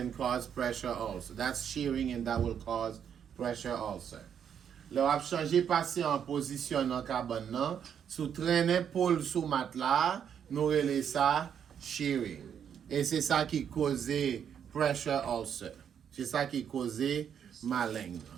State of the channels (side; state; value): left; quieter; 8.3 dB